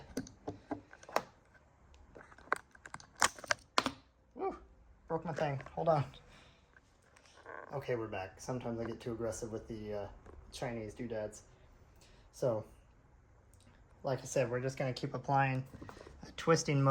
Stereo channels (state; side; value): identical; both; correlation 1.00